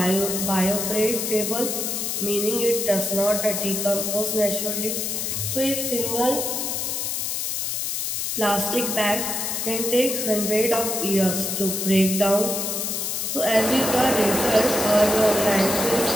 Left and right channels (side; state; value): left; noise; hiss, 1 dB below the sound